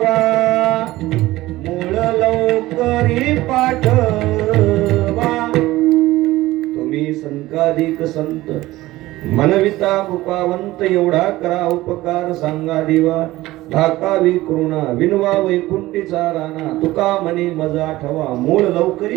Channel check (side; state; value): left; quieter; 17.5 dB